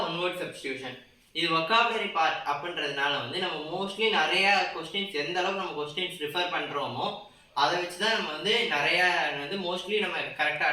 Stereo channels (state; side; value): identical; both; correlation 1.00